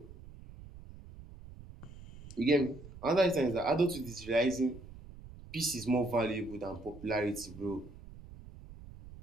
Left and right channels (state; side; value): noise; right; rumble, 17 dB below the sound